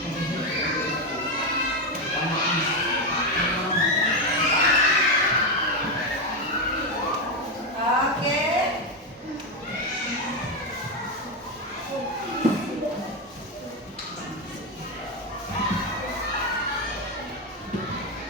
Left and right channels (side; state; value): both; normal; correlation 0.09